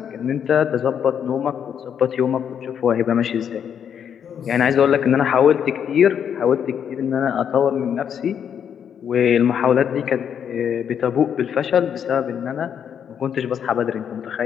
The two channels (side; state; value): right; quieter; 8.3 dB